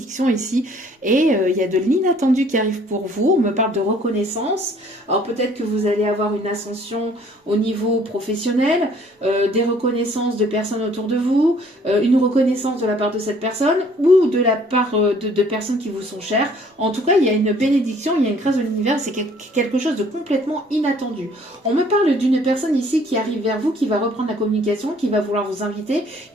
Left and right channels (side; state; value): both; normal; correlation 0.58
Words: ici. Et il y a de l'inattendu qui arrive pour vous. On me parle de reconnaissance. Alors peut-être que vous allez avoir une ascension au niveau professionnel, des reconnaissances de personnes autour de vous, une reconnaissance de la part de cette personne ou de la part de personnes qui vous sont chères. En tout cas, il y a une bénédiction, il y a une grâce de l'univers. C'est quelque chose de complètement inattendu. On me parle d'une personne ici qui arrive vers vous, qui va reprendre la communication, qui va vouloir vous inviter.